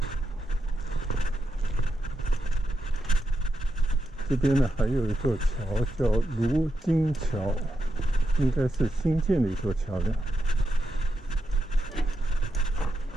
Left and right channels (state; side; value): normal; both; correlation 0.85